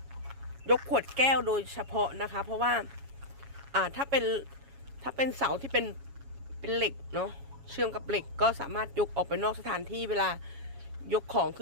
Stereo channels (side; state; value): left; late; 7.2 ms